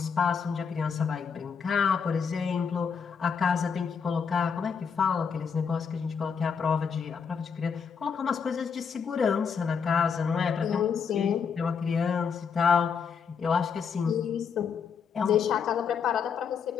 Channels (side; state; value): right; quieter; 6.3 dB